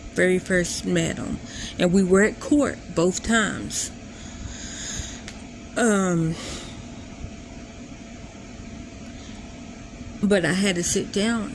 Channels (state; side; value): identical; both; correlation 1.00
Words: very first met them. And we were at court both times. But I had to sit down